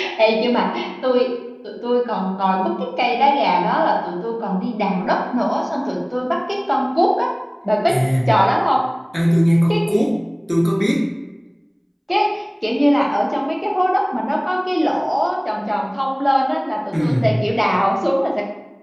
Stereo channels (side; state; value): both; identical; correlation 1.00